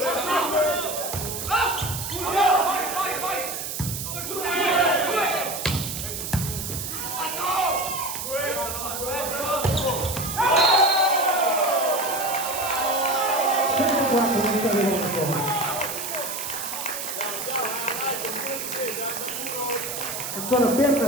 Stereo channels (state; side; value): noise; right; hiss, 5 dB below the sound